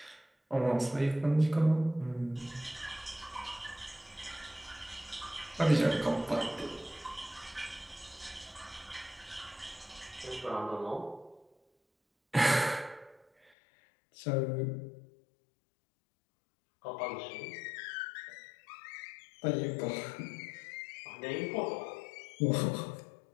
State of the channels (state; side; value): drops out; right; at 13.5 s